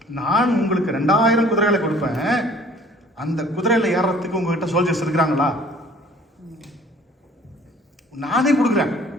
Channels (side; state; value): both; normal; correlation 0.52